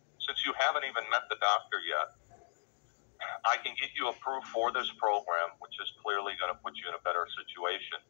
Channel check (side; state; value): right; silent; digital silence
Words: Since you haven't even met the doctor yet, I can get you approved for this program, which is clearly going to put you in a better situation.